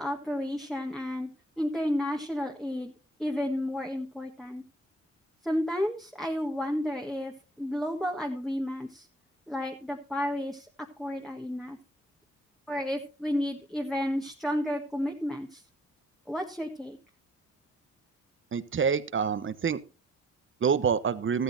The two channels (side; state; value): both; normal; correlation 0.60